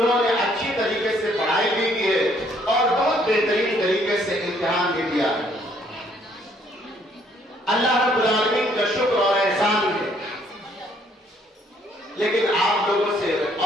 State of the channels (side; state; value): both; normal; correlation 0.65